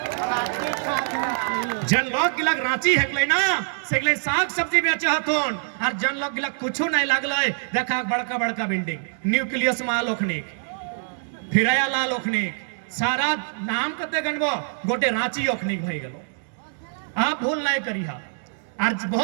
जन लोग गिला रांची है ना से साग सब्जी बेचे हथुन, और जन लोग गिला कुछ नहीं लगल। देखा बड़का बड़का बिल्डिंग, न्यूक्लियस माल ओखनिक, फिराया लाल ओखनिक, सारा नाम कते गणबो गोटे रांची ओखनिक भई गलो। आप भूल नहीं करिहा। और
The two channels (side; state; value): left; silent; digital silence